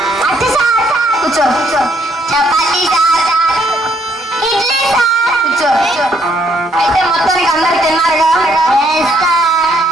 కూర్చో కూర్చో. Chapati sir, idli sir. కూర్చో. అయితే మొత్తానికి అందరు తిన్నారుగా?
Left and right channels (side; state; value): both; normal; correlation 0.69